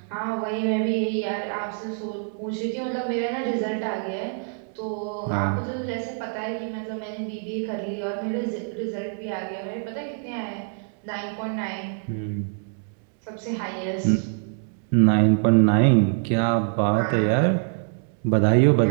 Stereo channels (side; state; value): left; silent; 56 dB below the other